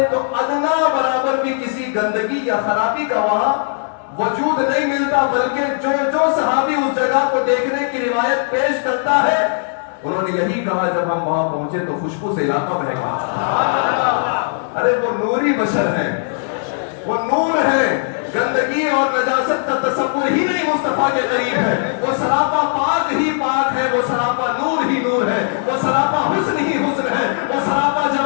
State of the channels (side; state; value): right; silent; digital silence